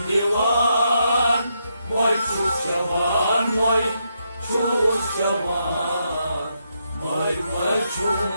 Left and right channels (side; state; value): both; inverted; correlation -0.80